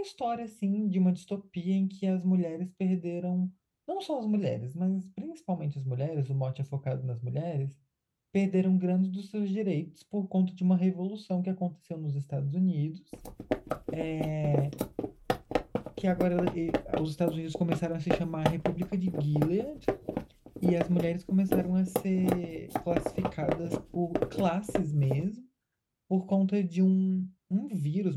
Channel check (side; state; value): both; identical; correlation 1.00